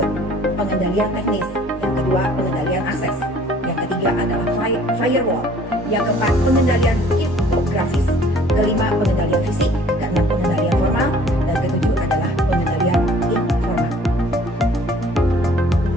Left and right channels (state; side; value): normal; both; correlation 0.54